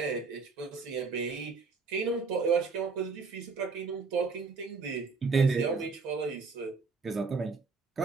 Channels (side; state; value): left; quieter; 4.6 dB